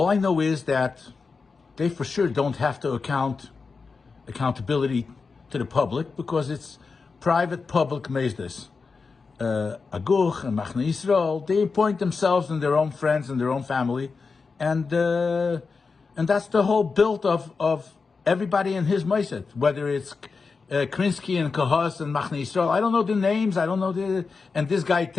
I know is that they for sure don't have to accountability to the public, because it's private public Meisdes. Aguch and Machne Yisrael, they appoint themselves and their own friends and their own family, and that's the whole build of everybody in his Mossad, whether it's Krinsky and Kahos and Machne Yisrael. I don't know the names, and this guy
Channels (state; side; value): quieter; right; 4.7 dB